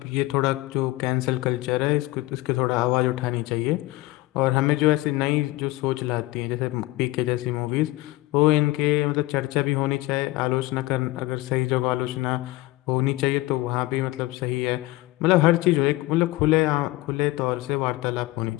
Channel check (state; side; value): quieter; right; 19.3 dB